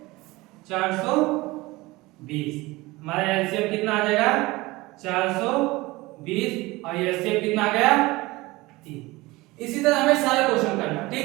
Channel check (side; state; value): left; quieter; 21.1 dB